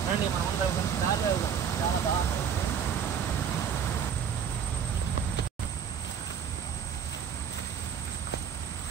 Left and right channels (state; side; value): quieter; left; 7.7 dB